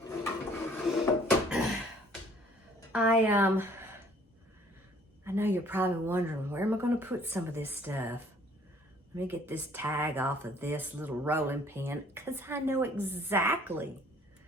know you're probably wondering, where am I going to put some of this stuff? Let me get this tag off of this little rolling pin, because I know exactly,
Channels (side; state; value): both; normal; correlation 0.58